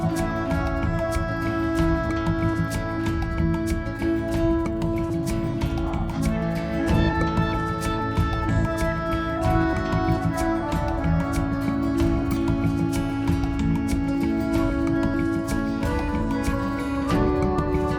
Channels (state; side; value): identical; both; correlation 1.00